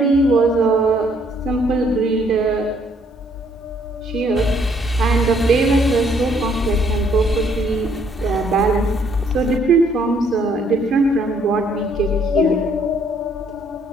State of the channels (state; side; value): normal; both; correlation 0.66